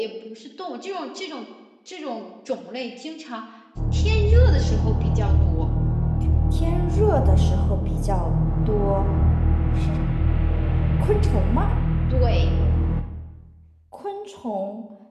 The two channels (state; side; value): identical; both; correlation 1.00